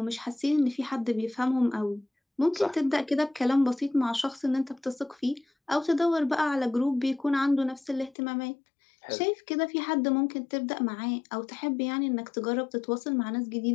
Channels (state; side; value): drops out; right; at 8.2 s